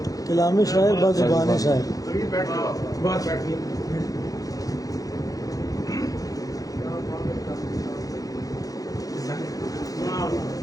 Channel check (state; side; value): late; right; 0.17 ms